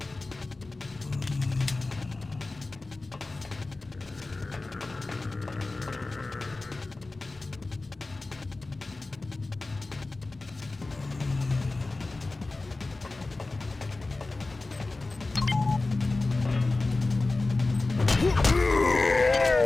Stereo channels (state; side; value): quieter; right; 3.3 dB